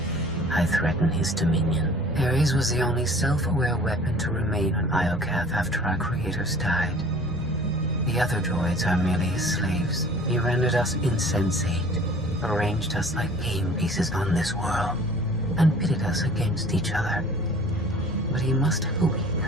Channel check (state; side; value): noise; left; rumble, 17 dB below the sound